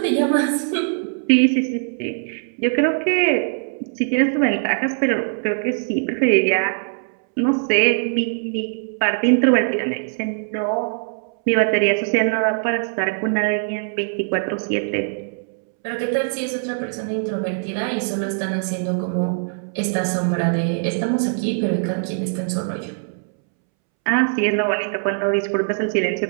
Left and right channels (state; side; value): silent; left; 65 dB below the other